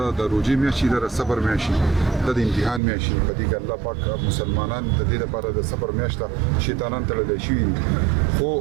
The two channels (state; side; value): drops out; left; at 2.8 s